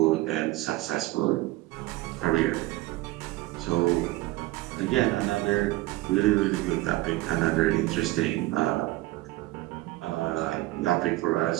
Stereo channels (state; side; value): quieter; left; 18.6 dB